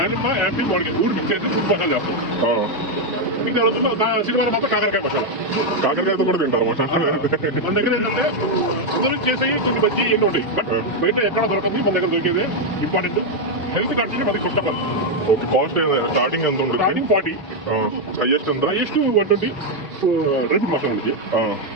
యాపిల్ మామిడికాయ మూడు మిక్స్ చేసి ఫ్రూట్ మసాలా చేస్తాం. ఇంకా శనివారం మాత్రం కాకరకాయ మసాలా. కాకరకాయతో కూడా తింటారు మసాలా. మన దగ్గర ఏంటంటే అందరూ చేసేవి చిన్న బజ్జీ ఎన్నో ఉంటాయి. బట్ బయట ఎక్కడ దొరకదు, మన దగ్గర దొరికేది ఇంపార్టెంట్. హెల్త్ కంటే మనకి first of all. Okay, cost starting ఎంత ఉంటుంది? స్టార్టింగ్ 40. హైయెస్ట్ ఎంత? హైయెస్ట్ 120. డ్రై ఫ్రూట్ మసాలా ఉంది.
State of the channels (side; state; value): both; normal; correlation 0.02